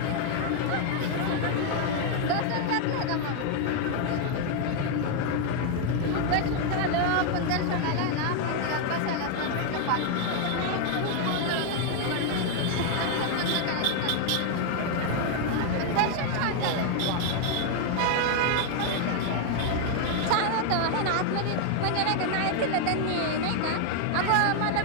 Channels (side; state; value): both; different; correlation 0.00